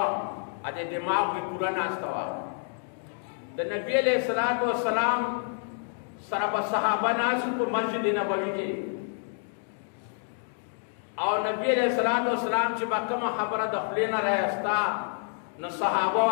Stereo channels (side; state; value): right; silent; 59 dB below the other